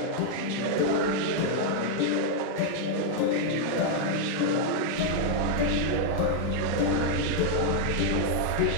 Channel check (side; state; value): both; different; correlation -0.01